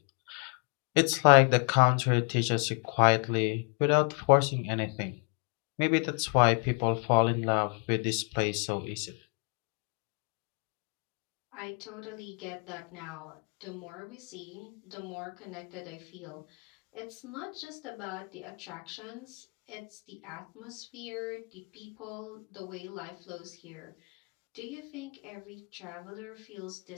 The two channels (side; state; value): right; quieter; 37.6 dB